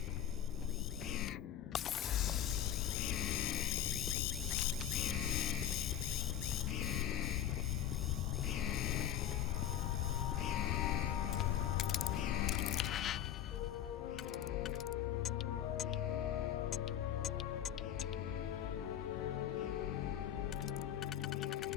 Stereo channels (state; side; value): quieter; right; 10.5 dB